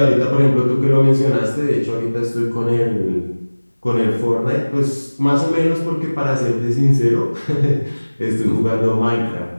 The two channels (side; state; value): both; inverted; correlation -1.00